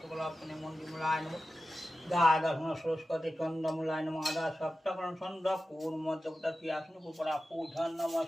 সরস্বতী চন্দ্রমূলায় নম আদা সপ্তকরণ ছন্দ কুর্ম দেবতা ক্রিয়াসন পুপরা পূজন নম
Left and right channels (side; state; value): both; normal; correlation 0.93